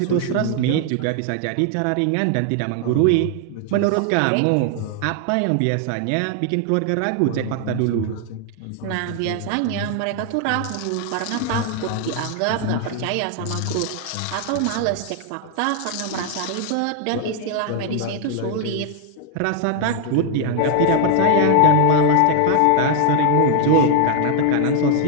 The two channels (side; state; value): both; different; correlation 0.00